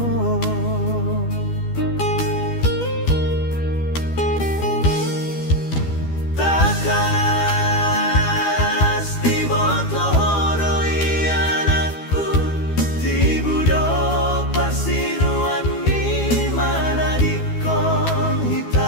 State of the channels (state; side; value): late; right; 12 ms